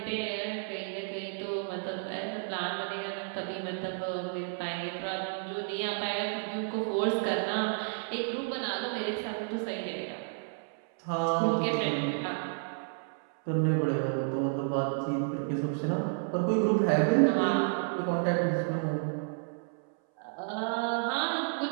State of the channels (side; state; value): left; silent; 57 dB below the other